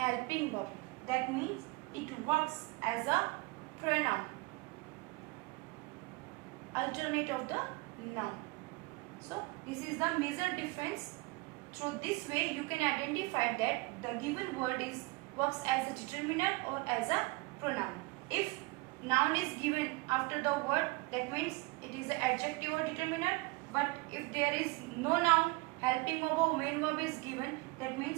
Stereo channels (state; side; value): quieter; left; 24.9 dB